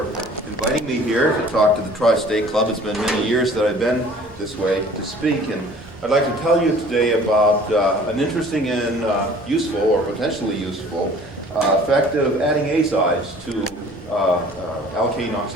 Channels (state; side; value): normal; both; correlation 0.50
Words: inviting me here to talk to the Tri-State Club. It's been many years that I've been this way to speak, and I'd like to tell you today about an interesting and useful, or potentially useful, effect of adding azides to alkane